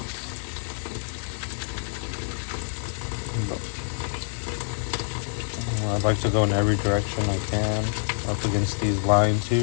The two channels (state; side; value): silent; right; 61 dB below the other